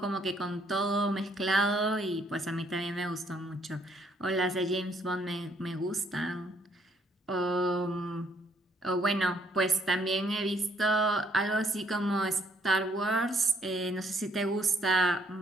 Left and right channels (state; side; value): normal; both; correlation 0.67